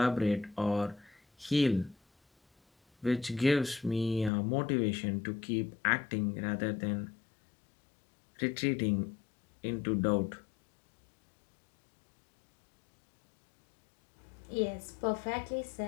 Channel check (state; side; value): drops out; right; at 4.3 s